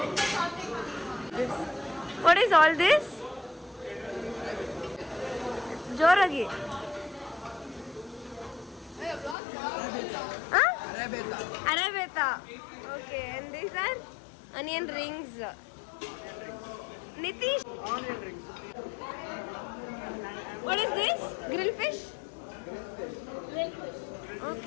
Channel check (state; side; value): drops out; right; at 9.3 s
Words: What is all this? Joragi. Huh? Arabeta. Okay, and these are onion rings. Nitish. Onion rings. What is this? Grilled fish?